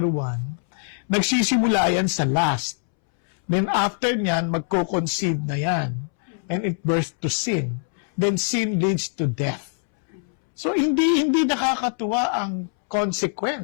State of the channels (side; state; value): right; silent; 63 dB below the other